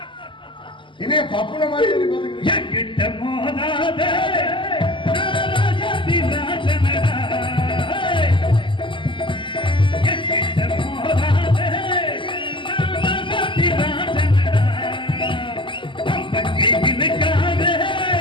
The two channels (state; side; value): late; right; 0.24 ms